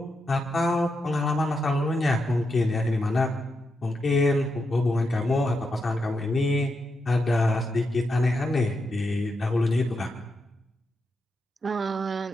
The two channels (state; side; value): normal; both; correlation 0.84